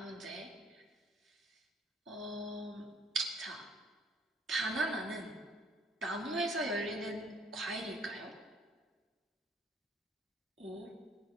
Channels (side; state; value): both; normal; correlation 0.59